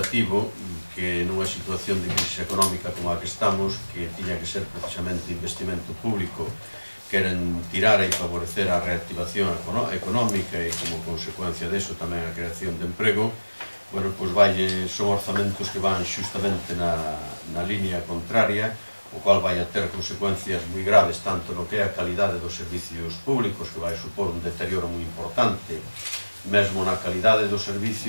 que nunha situación de crisis económica como a que estamos, que tiña que ser precisamente investimento público, queren tirar e favorecer a reactivación económica e como consecuencia deso tamén a creación de emprego, bueno, pois son orzamentos que van xustamente na línea contraria, o cual vai a ter consecuencias moi graves tanto no que é a calidade dos servicios públicos, que vai supor un deterioro moi importante, mesmo na calidade do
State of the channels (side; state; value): both; inverted; correlation -1.00